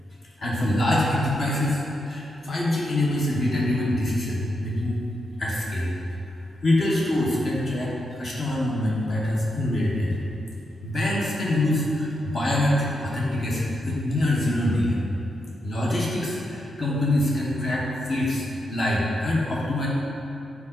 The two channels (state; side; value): normal; both; correlation 0.83